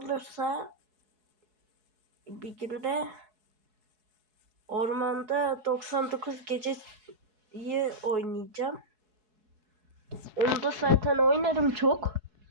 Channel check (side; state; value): left; late; 4.7 ms